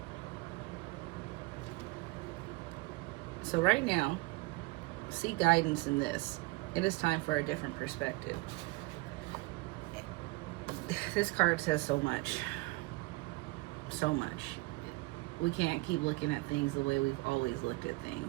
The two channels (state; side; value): quieter; left; 23.4 dB